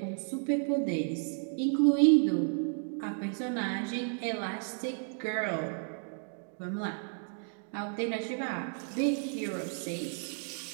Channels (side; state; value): left; silent; 56 dB below the other